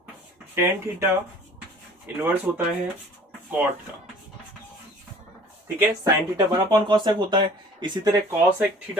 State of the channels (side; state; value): both; normal; correlation 0.50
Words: टेन थीटा इनवर्स होता है कॉट का। ठीक है, साइन थीटा 1 कॉसेक होता है। इसी तरह कॉसेक